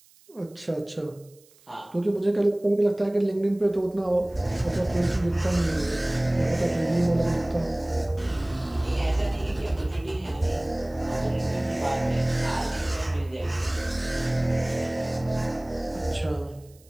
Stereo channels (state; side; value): noise; right; hiss, 29 dB below the sound